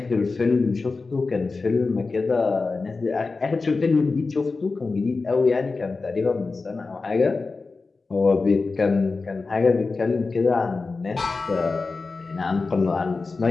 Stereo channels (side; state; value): right; quieter; 4.0 dB